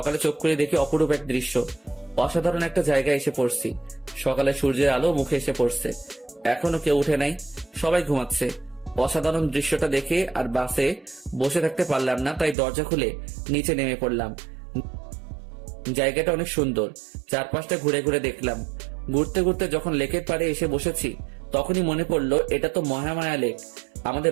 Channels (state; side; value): drops out; left; at 12.6 s